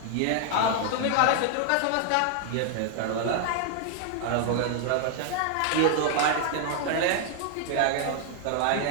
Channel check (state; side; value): different; both; correlation 0.00